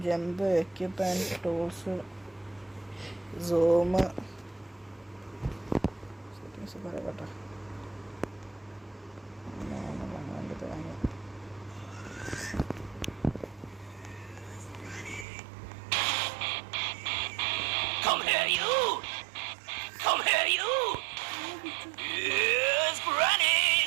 jump, equipment, tools, zoom, settings പറയട്ടെ. Come here, you! Come here, you! Yes, Granny!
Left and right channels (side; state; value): left; drops out; at 15.2 s